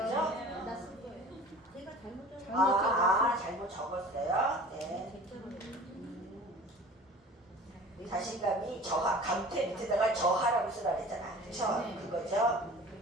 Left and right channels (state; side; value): normal; both; correlation 0.43